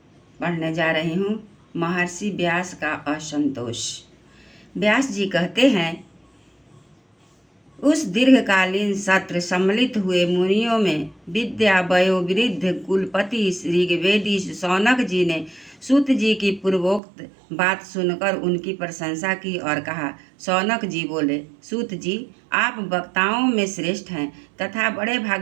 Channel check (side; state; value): left; drops out; at 17.0 s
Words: पढ़ने जा रही हूँ। महर्षि व्यास का असंतोष। व्यास जी कहते हैं, उस दीर्घकालीन सत्र सम्मिलित हुए मुनियों में विद्या वयोवृद्ध कुलपति ऋग्वेदी शौनक जी ने सूत जी की पूर्वोक्त बात सुनकर उनकी प्रशंसा की और कहा। शौनक जी बोले, सूत जी, आप वक्ताओं में श्रेष्ठ हैं तथा बड़े